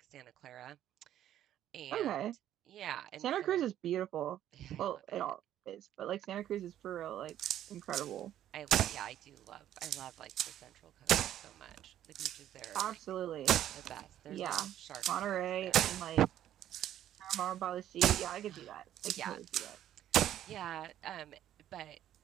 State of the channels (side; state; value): left; quieter; 11.7 dB